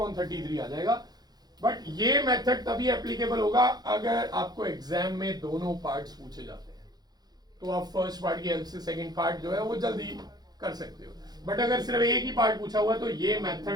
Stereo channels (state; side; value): late; left; 0.19 ms